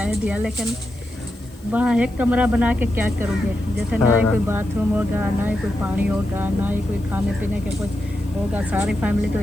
दिया, लेकिन वहाँ एक कमरा बना के क्या करोगे। जैसे ना ही कोई बाथरूम होगा, ना ही कोई पानी होगा, ना ही कोई खाने पीने के कुछ होगा। सारी फैमिली तो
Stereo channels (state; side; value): noise; left; hiss, 27 dB below the sound